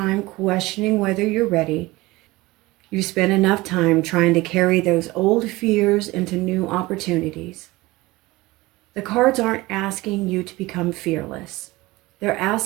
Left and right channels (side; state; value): left; quieter; 20.5 dB